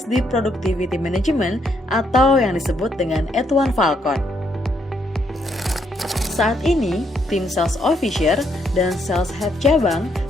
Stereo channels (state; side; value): normal; both; correlation 0.74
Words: Productivity Management atau yang disebut dengan Atuan Falcon. Saat ini, tim Sales Officer dan Sales Head cabang